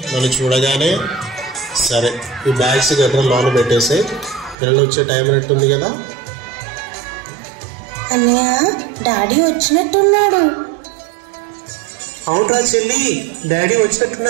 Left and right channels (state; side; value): drops out; left; at 4.5 s